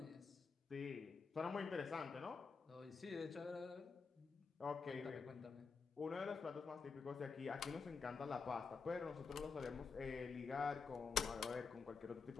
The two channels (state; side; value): quieter; right; 5.1 dB